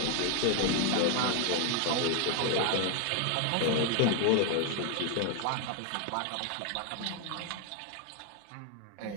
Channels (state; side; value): different; both; correlation 0.00